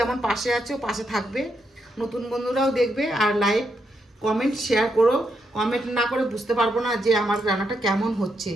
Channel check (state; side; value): normal; both; correlation 0.80